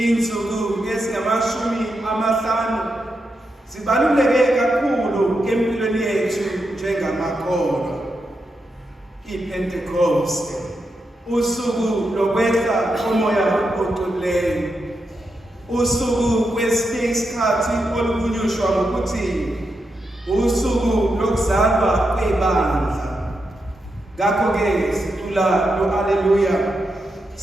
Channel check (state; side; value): normal; both; correlation 0.85